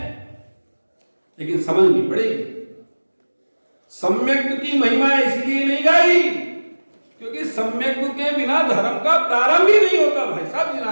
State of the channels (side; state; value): both; inverted; correlation -1.00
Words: लेकिन समझनी पड़ेगी। सम्यक की महिमा इसलिए नहीं गाई क्योंकि सम्यक के बिना धर्म का प्रारंभ ही नहीं होता भाई साहब